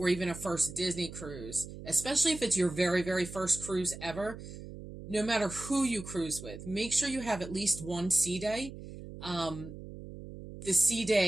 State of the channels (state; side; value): noise; right; hum, 12 dB below the sound